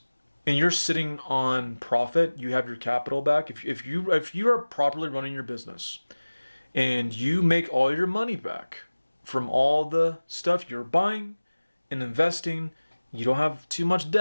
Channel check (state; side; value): inverted; both; correlation -1.00